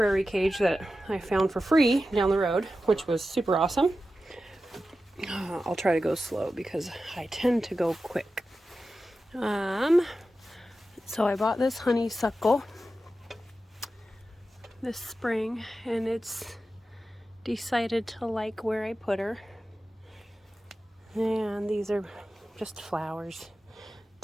cage that I found for free down the road, which was super awesome. I'll try to go slow because I tend to go quick. So I bought this honeysuckle this spring, and it's decided to like where I put her. And these are just flowers,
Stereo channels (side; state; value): both; normal; correlation 0.92